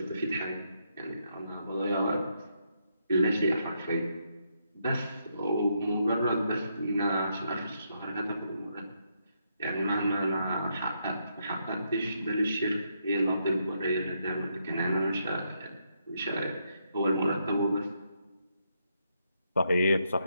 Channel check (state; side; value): inverted; both; correlation -0.78